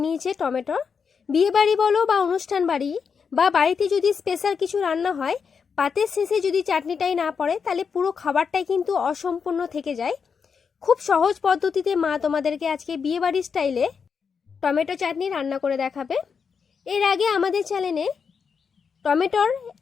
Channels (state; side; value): quieter; right; 6.1 dB